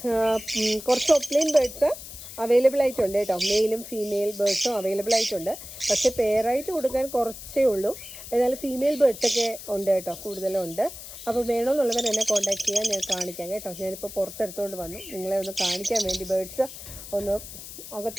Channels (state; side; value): noise; left; hiss, 13 dB below the sound